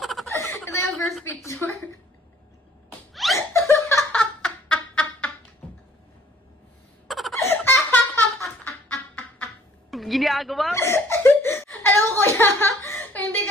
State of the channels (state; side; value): normal; both; correlation 0.57